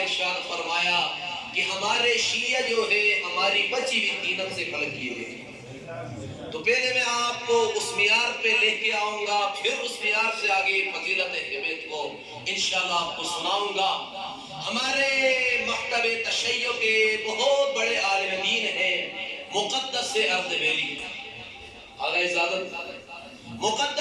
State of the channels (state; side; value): identical; both; correlation 1.00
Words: ارشاد فرمایا کہ ہمارے شیعہ جو ہے ہماری بچی ہوئی تینت سے خلق کیے گئے۔ تو پہلے میں آپ کو اس معیار پہ لے کے آؤں گا، پھر اس معیار سے آگے فضیلت اہمیت کو انشاءاللہ آپ کو سناؤں گا۔ ہمارے مکتب تشیع کے بہت بڑے عالم دین ہیں مقدس اردبیلی، آگے اجازت،